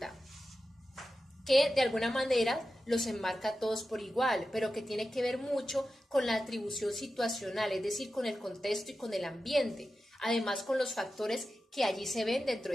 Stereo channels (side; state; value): both; normal; correlation 0.92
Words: que de alguna manera los enmarca a todos por igual, pero que tiene que ver mucho con la atribución situacional, es decir, con el contexto y con el ambiente, además con los factores que allí se ven dentro